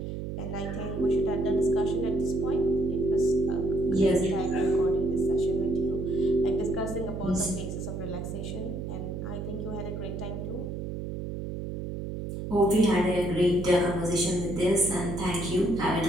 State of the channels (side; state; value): right; noise; hum, 6 dB below the sound